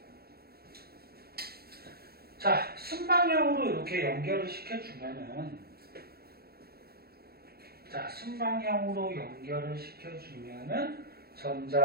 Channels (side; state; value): left; late; 0.45 ms